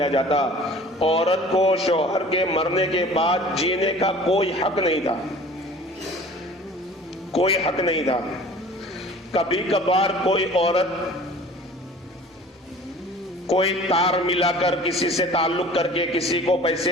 جاتا. عورت کو شوہر کے مرنے کے بعد جینے کا کوئی حق نہیں تھا، کوئی حق نہیں تھا. کبھی کبھار کوئی عورت کوئی تار ملا کر، کسی سے تعلق کر کے، کسی کو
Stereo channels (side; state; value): both; normal; correlation 0.45